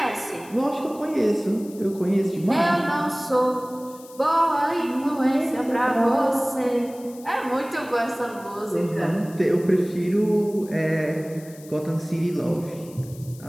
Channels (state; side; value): noise; left; hiss, 22 dB below the sound